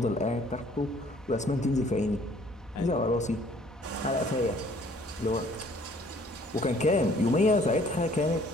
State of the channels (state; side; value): normal; both; correlation 0.58